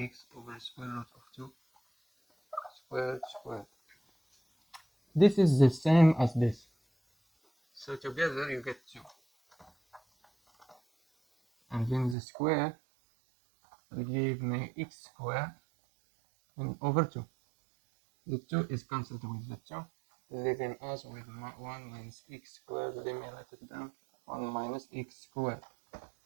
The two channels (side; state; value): left; drops out; at 12.2 s